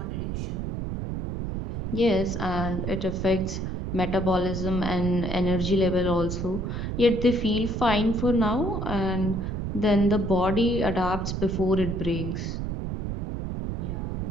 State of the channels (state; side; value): noise; right; rumble, 3 dB below the sound